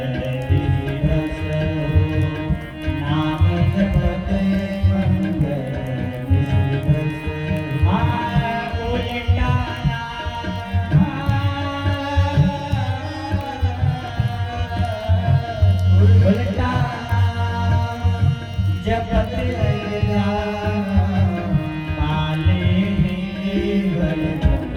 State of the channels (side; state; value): both; identical; correlation 1.00